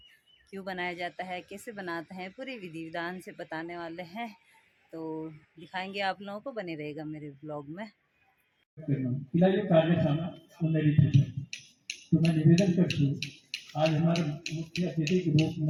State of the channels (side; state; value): both; identical; correlation 1.00